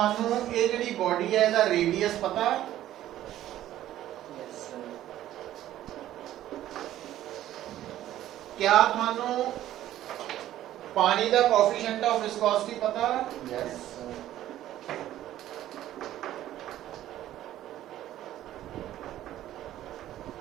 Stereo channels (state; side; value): quieter; left; 13.1 dB